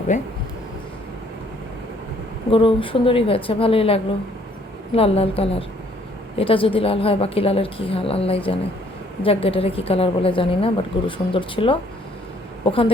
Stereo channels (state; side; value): normal; both; correlation 0.63